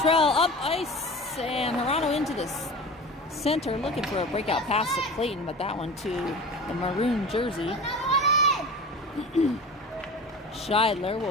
up ice, and Hirano into this center, looking for a breakout pass to Clayton, but that one to the maroon jersey. Scheidler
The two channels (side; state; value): both; normal; correlation 0.35